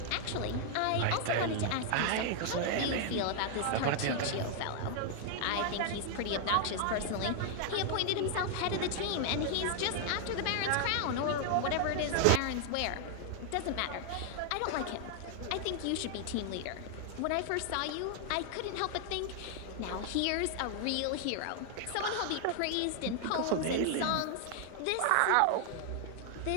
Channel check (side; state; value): both; different; correlation 0.00